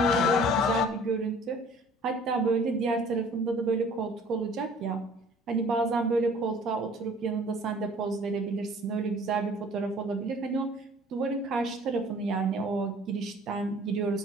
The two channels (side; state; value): both; normal; correlation 0.51